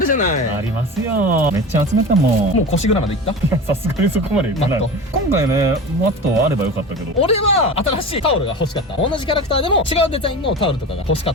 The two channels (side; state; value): both; normal; correlation 0.31